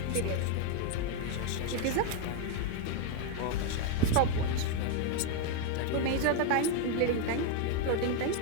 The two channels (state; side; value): different; both; correlation 0.01